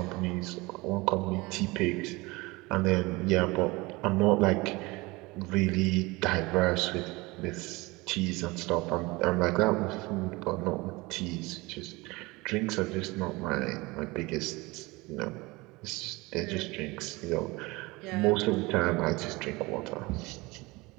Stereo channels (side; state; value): left; quieter; 23.1 dB